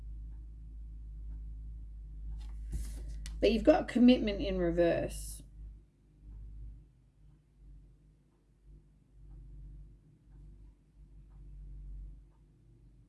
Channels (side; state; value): both; identical; correlation 1.00